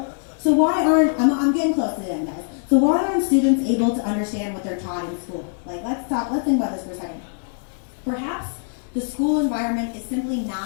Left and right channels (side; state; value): right; silent; 64 dB below the other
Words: So why aren't, I'm getting close to the end, guys. So why aren't students able to understand what they're taught in school? Like, let's think about this for a second. Perhaps the school environment is simply